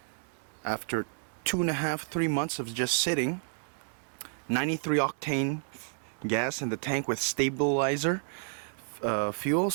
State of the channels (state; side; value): silent; left; 57 dB below the other